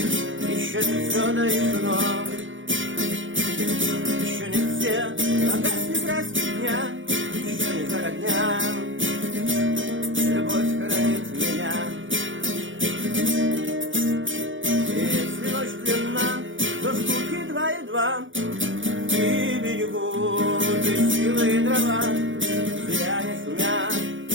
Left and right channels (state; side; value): late; left; 0.56 ms